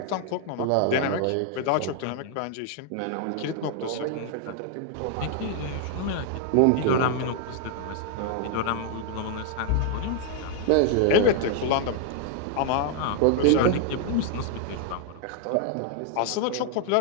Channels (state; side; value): different; both; correlation 0.00